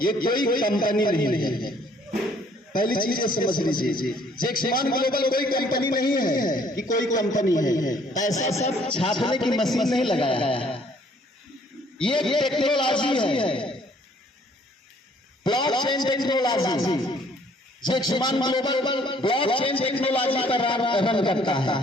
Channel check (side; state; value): both; normal; correlation 0.61